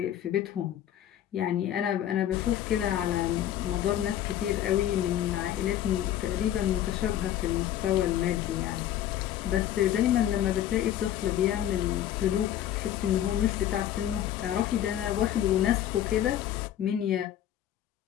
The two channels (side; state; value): right; quieter; 11.6 dB